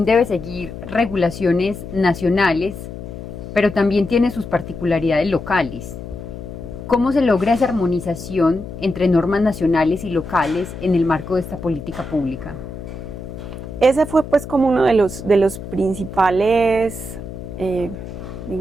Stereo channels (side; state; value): left; noise; hum, 11 dB below the sound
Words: debe seguir regulaciones nacionales, pero también tiene sus particularidades locales. ¿Cómo se logra esa armonización entre normas nacionales y locales en el marco de esta política pública? Ese fue pues como uno de los principales,